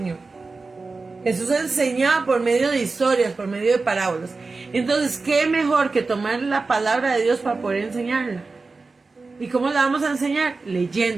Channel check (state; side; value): quieter; left; 3.9 dB